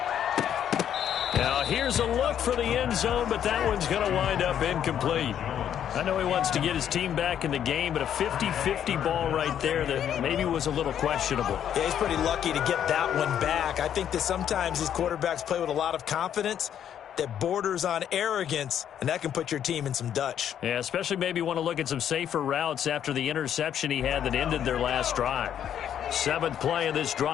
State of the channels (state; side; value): quieter; right; 9.6 dB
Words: Now here's a look for the end zone, but that one's going to wind up incomplete. I know he wants to get his team back in the game, but a 50-50 ball right there that maybe was a little questionable. Yeah, he's pretty lucky to get that one back. I think that sometimes these quarterbacks play with a lot of confidence that borders on arrogance, and that can put your team in some Dutch. Yeah, especially maybe want to look at some safer routes after the interception he had that ended their last drive. 7th play of this